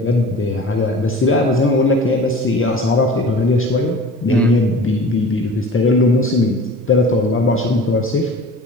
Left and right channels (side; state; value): both; normal; correlation 0.40